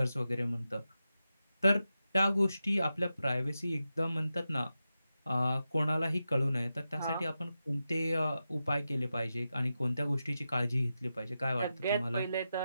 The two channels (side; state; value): both; inverted; correlation -0.90